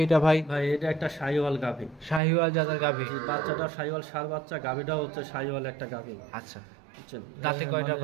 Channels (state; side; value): drops out; left; at 2.2 s